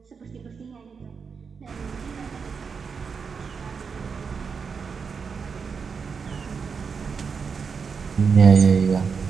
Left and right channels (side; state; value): left; quieter; 5.7 dB